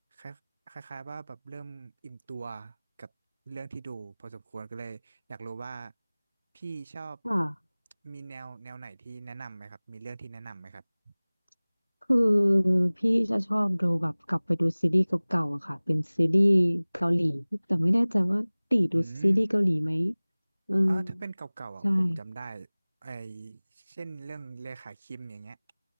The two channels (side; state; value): both; inverted; correlation -1.00